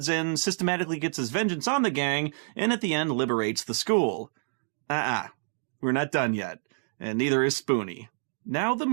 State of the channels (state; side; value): silent; left; digital silence